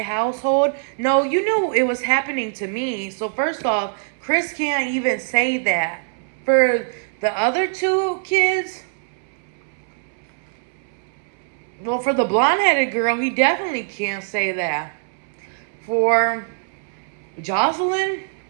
household. No, you knew it was happening to me. So first off, Chris can't even say that. For the other two kids, well, for the blonde-headed girl, he definitely can't say that. For Jocelyn,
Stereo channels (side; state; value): left; silent; 64 dB below the other